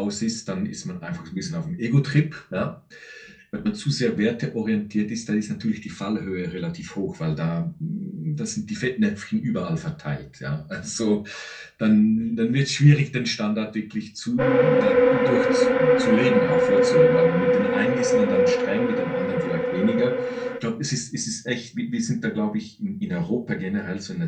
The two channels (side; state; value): both; identical; correlation 1.00